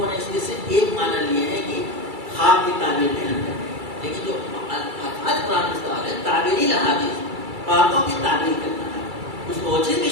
نے اس کے صرف ایک معنی لیے ہیں کہ خواب کی تعبیر بیان کرنا، لیکن جو الفاظ قرآن میں استعمال ہے تعویل الحادیث، باتوں کی تعبیر کرنا ہے، اس میں وہ چیز بھی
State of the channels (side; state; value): left; late; 2.3 ms